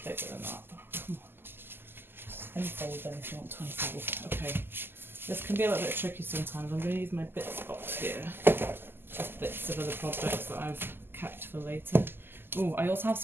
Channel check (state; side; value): late; left; 0.10 ms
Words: bigger than that. Come on. Unfold then if you want to unfold. Okay, this can be a little bit tricky sometimes. I'm going to use my bits box here, just bits of other projects that I've kept for later. Oh, I also have